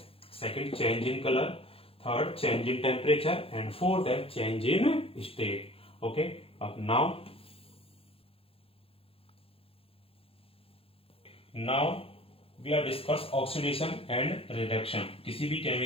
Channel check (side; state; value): right; late; 0.27 ms